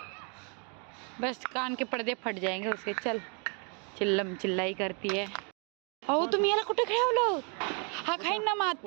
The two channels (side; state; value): left; quieter; 37.2 dB